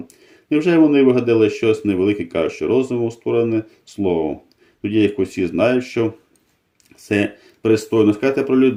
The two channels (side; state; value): both; identical; correlation 1.00